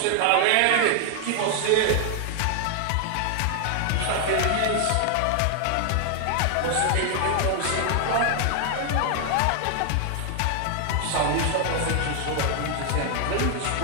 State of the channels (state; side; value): different; both; correlation 0.00